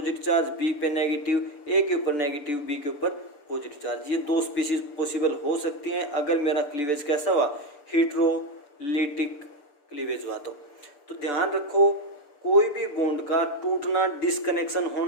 चार्ज, बी पे नेगेटिव, ए के ऊपर नेगेटिव, बी के ऊपर पॉजिटिव चार्ज। ये दो स्पीसीज पॉसिबल हो सकती हैं अगर मेरा क्लीवेज कैसा हुआ, हेट्रोलिटिक क्लीवेज हुआ। तो ध्यान रखो, कोई भी बॉन्ड का टूटना, डिस्कनेक्शन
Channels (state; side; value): late; right; 6.8 ms